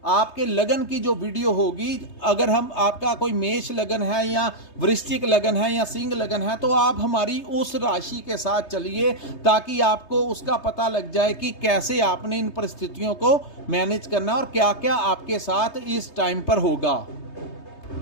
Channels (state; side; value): late; right; 3.3 ms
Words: आपके लगन की जो वीडियो होगी, अगर हम आपका कोई मेष लगन है या वृश्चिक लगन है या सिंह लगन है तो आप हमारी उस राशि के साथ चलिए, ताकि आपको उसका पता लग जाए कि कैसे आपने इन परिस्थितियों को मैनेज करना और क्या क्या आपके साथ इस टाइम पर होगा।